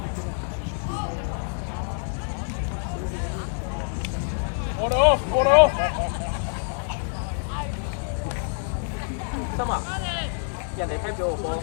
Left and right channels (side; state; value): right; silent; 61 dB below the other